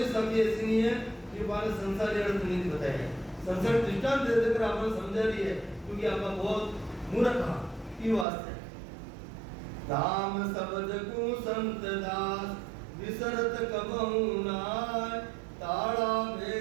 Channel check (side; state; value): left; drops out; at 8.2 s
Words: शब्द ऐसी नहीं है कि वाले संसारी अर्थ नहीं बताए हैं। संसार दृष्टांत दे देकर आपने समझा दी है, क्योंकि आपका बहुत मूर्ख था। ये वास्ते राम शब्द को संत दास विसरत कबहू नाय, ताड़ा